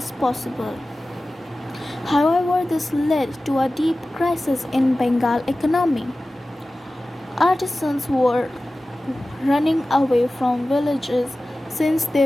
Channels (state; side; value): normal; both; correlation 0.96